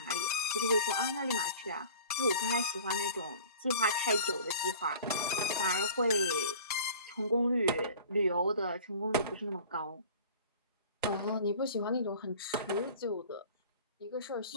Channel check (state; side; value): inverted; both; correlation -0.44